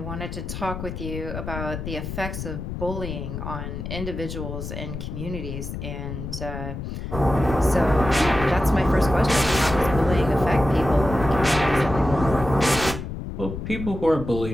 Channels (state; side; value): noise; left; rumble, 7 dB below the sound